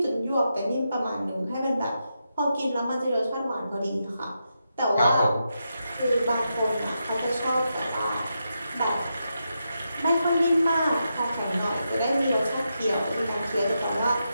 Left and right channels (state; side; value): inverted; both; correlation -0.85